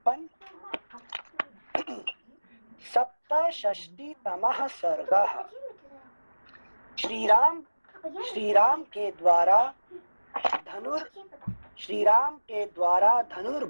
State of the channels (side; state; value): both; inverted; correlation -1.00